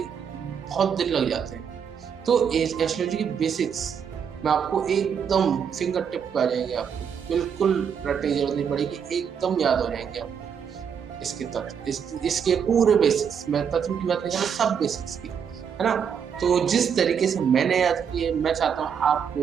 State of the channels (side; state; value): left; quieter; 7.3 dB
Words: दिन लग जाते हैं। तो एस्ट्रोलॉजी की बेसिक्स मैं आपको एकदम फिंगर टिप पे आ जाएंगे, आपको बिल्कुल रटने की जरूरत नहीं पड़ेगी, एकदम याद हो जाएंगे आपको इसके तत्व, इसके पूरे बेसिक्स। मैं तत्व की बात नहीं कर रहा, सब बेसिक्स की, है ना। तो जिस तरीके से मैंने याद किए, मैं चाहता हूँ आपको